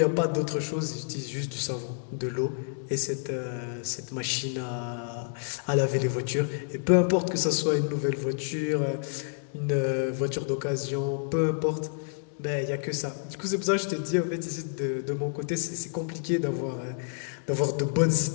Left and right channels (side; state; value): right; silent; digital silence